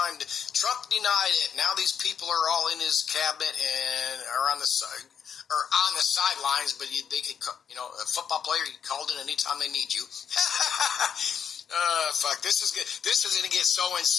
Trump denied it. Now these people are all in his cabinet and are on the side. Or on the sidelines, but they could, a football player, you called in anytime they need you. Fuck, this is good. This is going to get so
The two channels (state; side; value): quieter; right; 7.6 dB